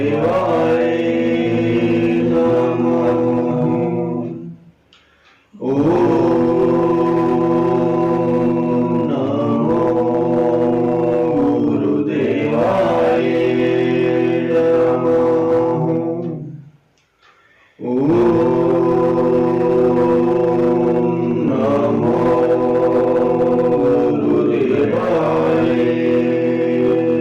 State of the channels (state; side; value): identical; both; correlation 1.00